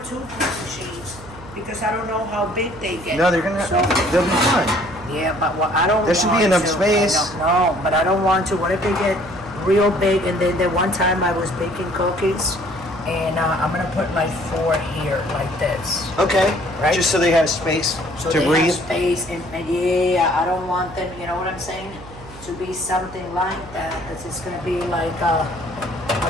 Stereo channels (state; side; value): noise; right; hum, 17 dB below the sound